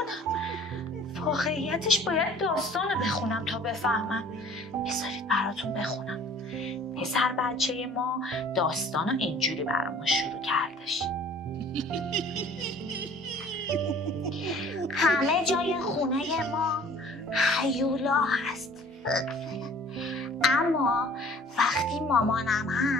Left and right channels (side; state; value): both; normal; correlation 0.51